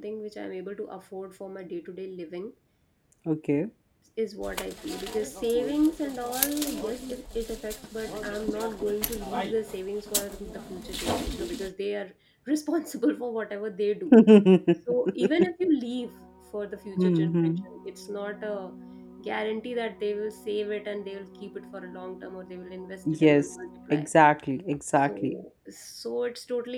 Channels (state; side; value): identical; both; correlation 1.00